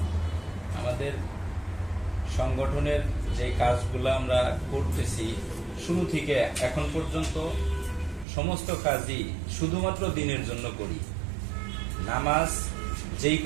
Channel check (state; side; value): drops out; left; at 8.2 s